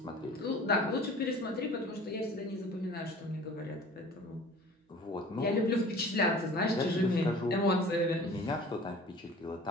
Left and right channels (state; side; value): normal; both; correlation 0.45